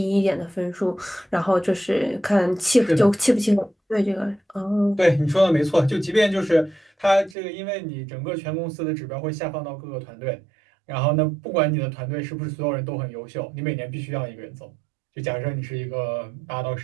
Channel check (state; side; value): drops out; left; at 7.4 s